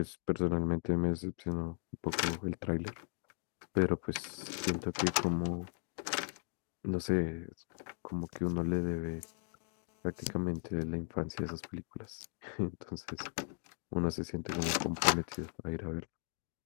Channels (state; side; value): silent; right; 53 dB below the other